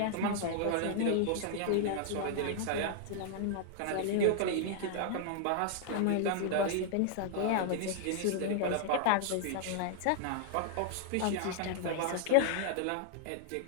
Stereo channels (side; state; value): both; different; correlation 0.00